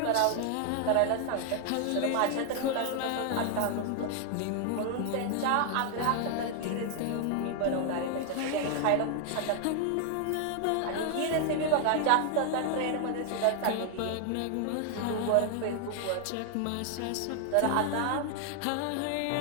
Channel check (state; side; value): different; both; correlation 0.00